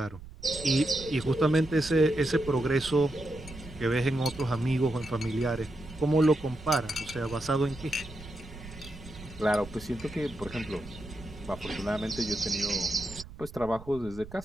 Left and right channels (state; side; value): noise; right; rumble, 16 dB below the sound